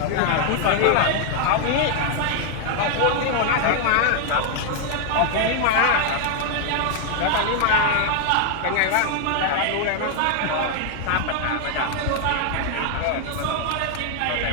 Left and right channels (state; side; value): different; both; correlation 0.00